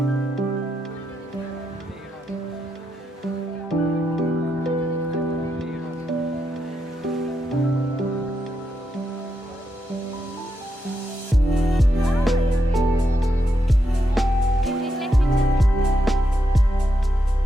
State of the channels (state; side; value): normal; both; correlation 0.83